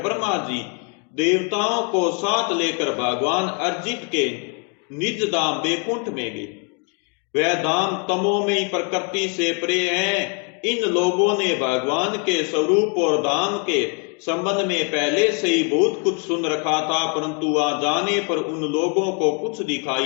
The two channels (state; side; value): quieter; right; 38.3 dB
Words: ब्रह्मा जी देवताओं को साथ लेकर भगवान अर्जित के निज धाम वैकुंठ में गए। वह धाम तमोमयी प्रकृति से परे है। इन लोगों ने भगवान के स्वरूप और धाम के संबंध में पहले से ही बहुत कुछ सुन रखा था, परंतु वहां जाने पर उन लोगों को कुछ